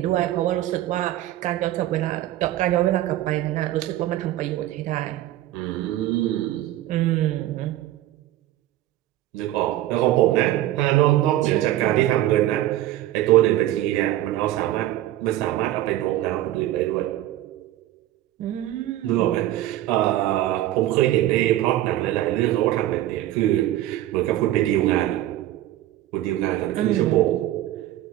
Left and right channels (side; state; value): left; quieter; 14.3 dB